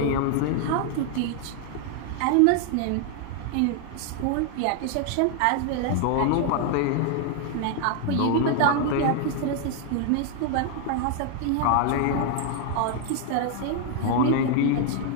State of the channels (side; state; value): both; different; correlation 0.00